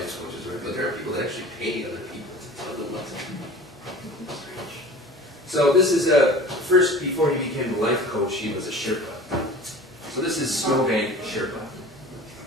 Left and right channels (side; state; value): both; normal; correlation 0.40